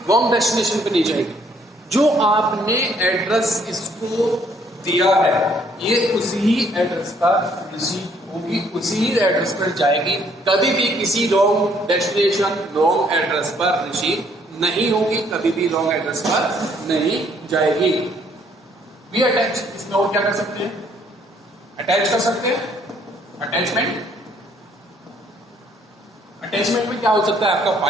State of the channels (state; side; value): normal; both; correlation 0.65